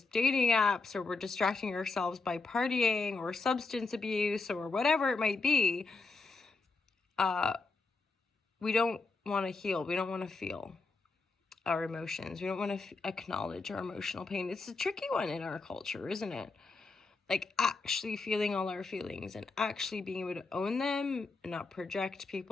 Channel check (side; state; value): right; quieter; 3.8 dB